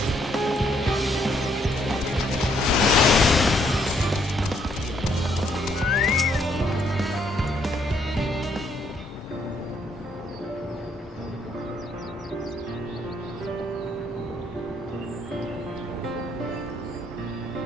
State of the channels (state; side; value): normal; both; correlation 0.70